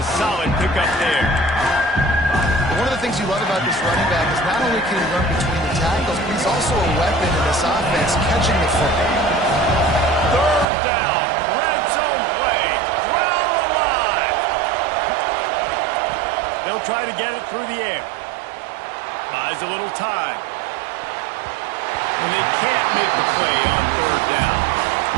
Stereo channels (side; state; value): left; drops out; at 10.7 s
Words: solid pickup there. One of the things you love about this running back is not only can he run between the tackles, but he's also a weapon in this offense, catching the football. Third down, red zone play, ground alive. They'll try to get it through the air. Buys a little time. And they can't make the play on third down.